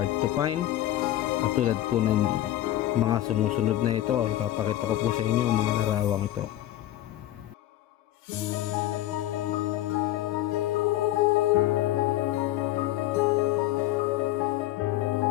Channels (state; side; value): quieter; right; 14.0 dB